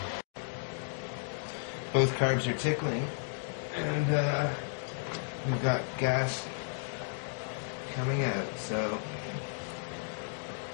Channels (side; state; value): right; silent; digital silence